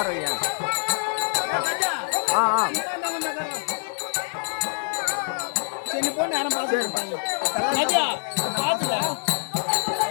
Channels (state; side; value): silent; right; digital silence